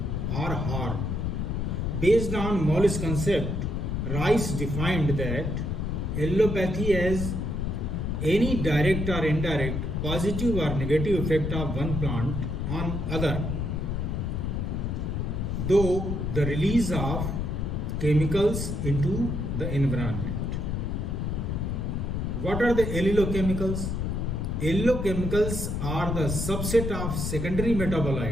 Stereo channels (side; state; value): left; noise; rumble, 1 dB below the sound